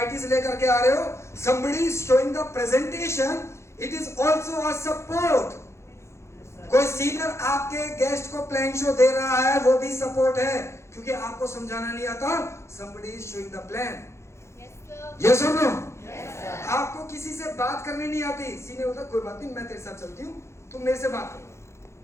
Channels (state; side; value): late; right; 0.13 ms